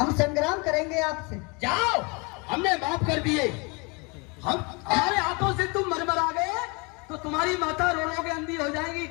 संग्राम करेंगे आपसे। जाओ, हमने माफ कर दिए। हम हमारे हाथों से तुम मरमरा गए तो तुम्हारी माता रो रो के अंधी हो जाएगी,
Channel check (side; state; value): right; quieter; 30.1 dB